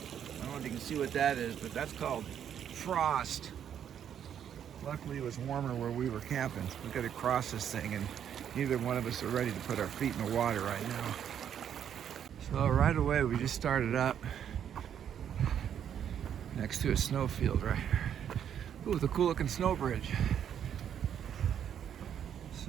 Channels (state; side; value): quieter; left; 9.1 dB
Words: don't know if you can see what that is, but that's called frost. Luckily it was warmer where we were camping. We got to cross this thing, and neither one of us are ready to put our feet in the water right now. So right away we just started up next to a snowfield right here. Ooh, with a cool looking snow bridge.